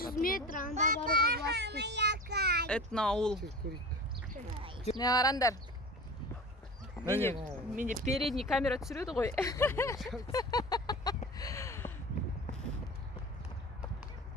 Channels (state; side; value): normal; both; correlation 0.34